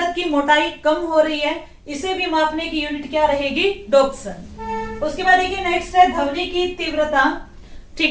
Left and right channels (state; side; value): identical; both; correlation 1.00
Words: की मोटाई कम हो रही है, इसे भी मापने की यूनिट क्या रहेगी, डोप्सन। उसके बाद देखिए नेक्स्ट है ध्वनि की तीव्रता,